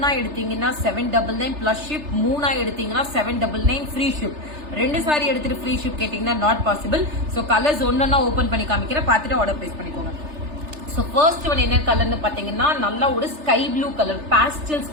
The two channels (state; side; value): late; left; 3.3 ms